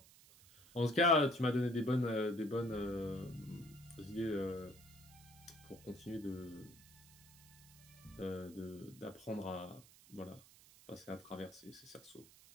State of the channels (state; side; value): noise; right; hiss, 22 dB below the sound